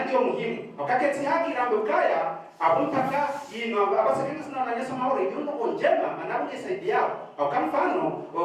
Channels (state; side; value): identical; both; correlation 1.00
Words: muhimu wakati haki rambe ukaya abumpaka ino abasa kitu sana na nyesa maore yundo konjema manabu yasaidia au kama mfano